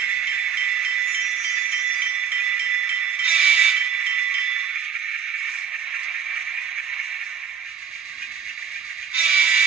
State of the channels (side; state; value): left; quieter; 7.4 dB